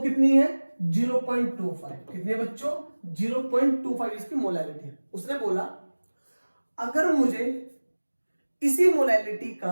कितनी है? 0.25। कितनी है बच्चों? 0.25 इसकी मोलैलिटी है। उसने बोला अगर मुझे इसी मोलैलिटी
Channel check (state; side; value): inverted; both; correlation -1.00